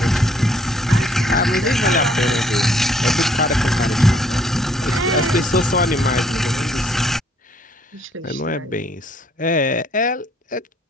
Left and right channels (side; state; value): both; normal; correlation 0.65